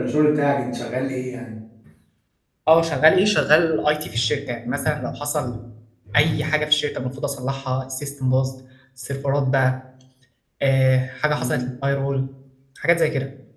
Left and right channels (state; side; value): identical; both; correlation 1.00